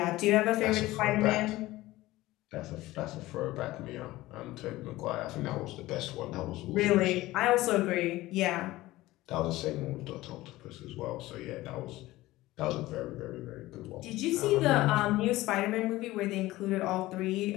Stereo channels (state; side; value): quieter; right; 17.7 dB